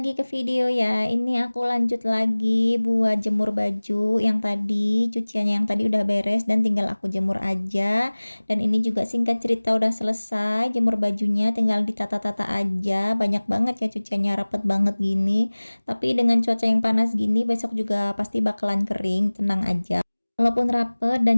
ke video ya. Ini aku lanjut lagi buat jemur baju yang tadi, cuciannya yang tadi udah beres dan tinggal aku jemur aja. Dan ini juga singkat cerita udah selesai jemur bajunya, tinggal ditata-tata aja. Banyak banget ya cuciannya, rapet banget gini. Tapi dengan cuaca yang panas gini besok juga pasti bakalan kering, tenang aja. Walaupun rapet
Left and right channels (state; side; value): inverted; both; correlation -1.00